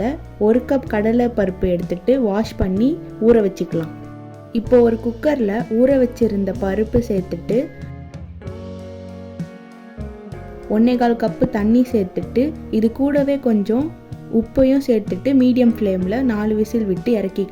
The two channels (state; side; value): identical; both; correlation 1.00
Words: 1 கப் கடலை பருப்பு எடுத்துட்டு வாஷ் பண்ணி ஊற வச்சுக்கலாம். இப்போ ஒரு குக்கரில் ஊற வச்சிருந்த பருப்பு சேர்த்துட்டு 1/4 கப்பு தண்ணி சேர்த்துட்டு இது கூடவே கொஞ்சம் உப்பையும் சேர்த்துட்டு மீடியம் ஃப்ளேமில் 4 விசில் விட்டு